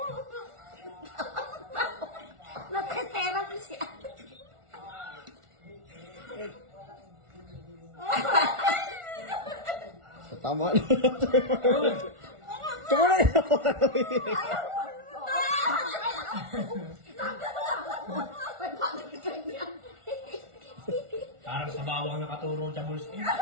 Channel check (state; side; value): late; left; 1.4 ms